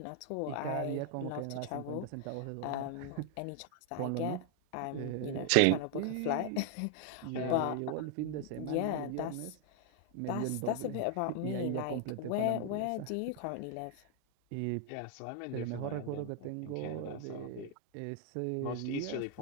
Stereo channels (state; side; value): different; both; correlation 0.00